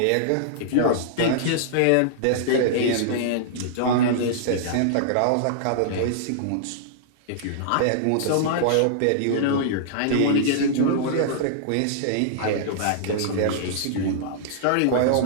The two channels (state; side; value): different; both; correlation -0.02